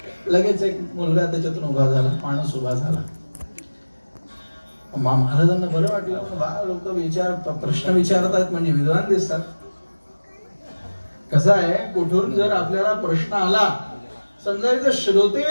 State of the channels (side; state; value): both; inverted; correlation -1.00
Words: लगेच एक मुलगा त्याच्यातून उभा झाला, माणूस उभा झाला. महाराजांना बरं वाटलं. लोक प्रश्न विचारतात म्हणजे विद्वान दिसतात. कसं आहे, कुठून जर आपल्याला प्रश्न आला, समजायचं श्रोते